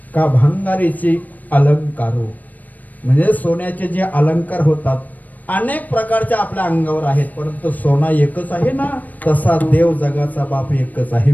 का भंगारीची अलंकारो म्हणजे सोन्याचे जे अलंकार होतात अनेक प्रकारच्या आपल्या अंगावर आहेत, परंतु सोना एकच आहे ना. तसा देव जगाचा बाप एकच आहे.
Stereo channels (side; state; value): right; late; 0.080 ms